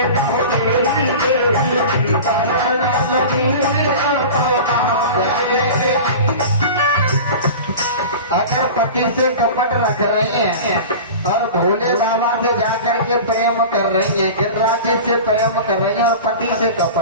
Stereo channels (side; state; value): both; inverted; correlation -0.34